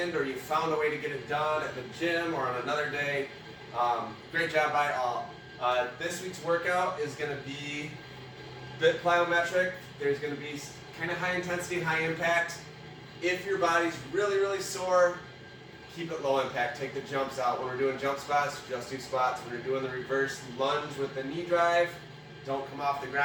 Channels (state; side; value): identical; both; correlation 1.00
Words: or you found a way to get it done at the gym or on another day. Great job by all. This week's workout is going to be a bit plyometric. There's going to be kind of high intensity, high impact. If your body's really, really sore, keep it low impact. Take the jumps out. When we're doing jump squats, just do squats. When we're doing the reverse lunge with the knee drive, don't come off the